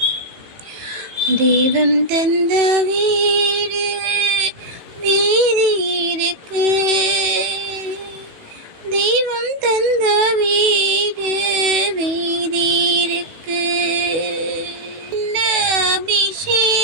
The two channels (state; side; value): late; left; 18 ms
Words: தெய்வம் தந்த வீடு வீதி இருக்கு. தெய்வம் தந்த வீடு வீதி இருக்கு.